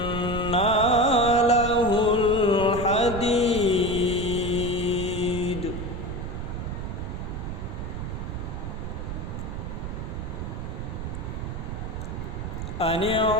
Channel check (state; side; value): noise; right; rumble, 5 dB below the sound